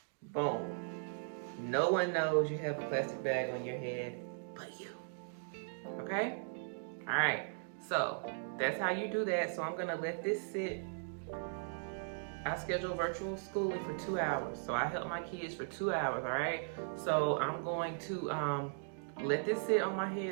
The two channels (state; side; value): silent; left; digital silence